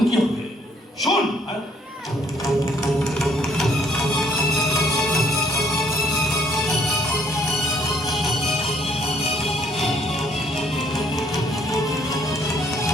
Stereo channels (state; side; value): normal; both; correlation 0.65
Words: কি হবে শোন